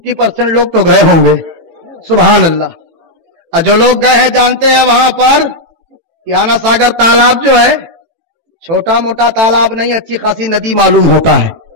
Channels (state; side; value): late; left; 18 ms